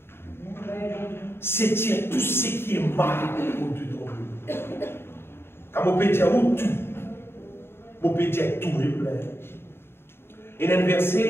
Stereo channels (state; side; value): late; right; 0.11 ms